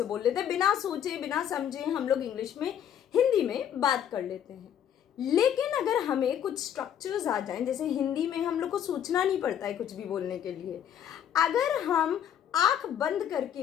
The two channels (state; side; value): quieter; right; 9.6 dB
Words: बोल लेते हैं, बिना सोचे बिना समझे हम लोग इंग्लिश में हिंदी में बात कर लेते हैं। लेकिन अगर हमें कुछ स्ट्रक्चर्स आ जाएं, जैसे हिंदी में हम लोग को सोचना नहीं पड़ता है कुछ भी बोलने के लिए, अगर हम आंख बंद